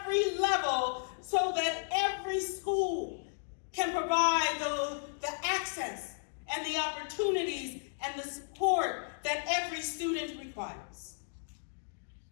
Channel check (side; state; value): right; silent; digital silence